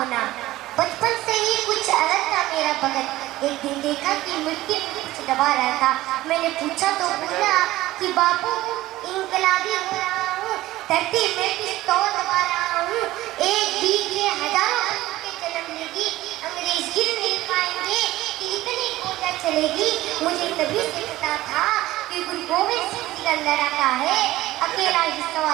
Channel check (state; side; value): quieter; left; 16.6 dB